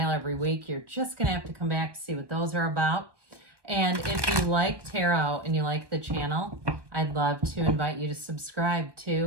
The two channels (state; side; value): late; left; 1.2 ms